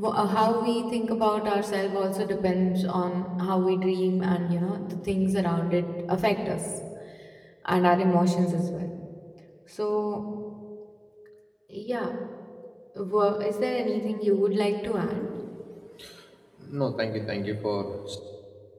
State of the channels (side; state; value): both; identical; correlation 1.00